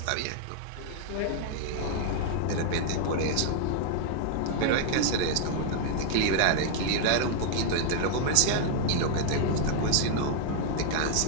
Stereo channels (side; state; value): both; different; correlation 0.00